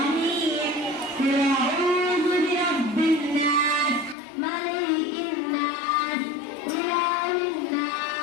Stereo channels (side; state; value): right; drops out; at 4.2 s